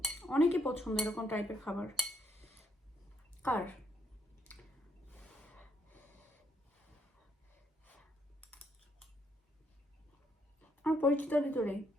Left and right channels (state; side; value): normal; both; correlation 0.73